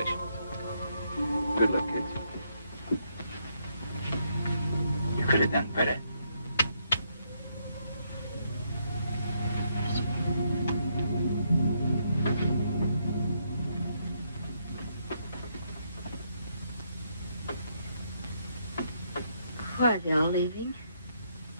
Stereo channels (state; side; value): inverted; both; correlation -0.75